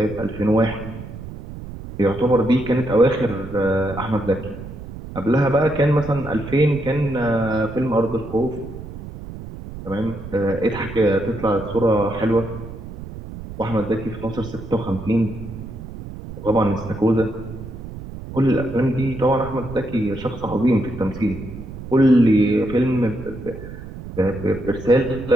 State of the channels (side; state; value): right; noise; rumble, 12 dB below the sound